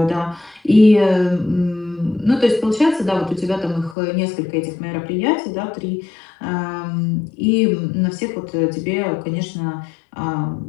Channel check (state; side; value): drops out; right; at 4.0 s